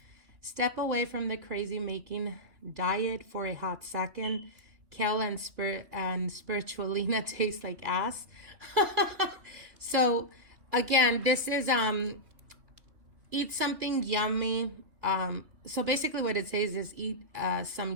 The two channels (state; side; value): late; left; 2.9 ms